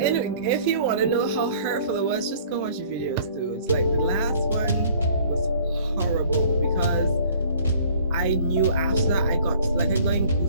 you want to know how hurtful it was, just go watch the videos, dude. It's like the last one was horrible because I knew after that I got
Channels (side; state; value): both; inverted; correlation -0.54